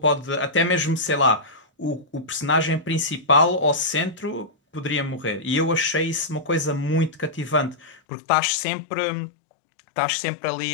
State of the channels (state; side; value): drops out; right; at 8.0 s